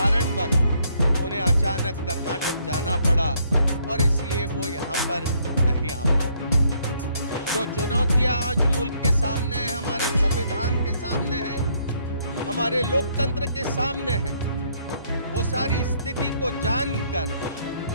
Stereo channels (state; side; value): inverted; both; correlation -0.69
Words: उन्हें अचानक कर्नाटक जाना पड़ा और इसलिए वो यहाँ पर नहीं आ पाए। जो चुनौतियां आज मुल्क के सामने हैं, हमारे संविधान के सामने हैं, हमारे लोकतंत्र के सामने हैं, वो सारी स्थिति को जानकर